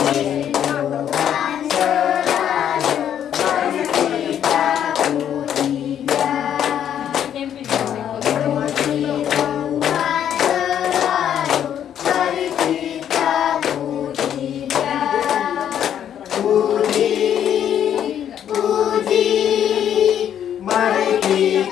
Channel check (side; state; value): right; quieter; 9.7 dB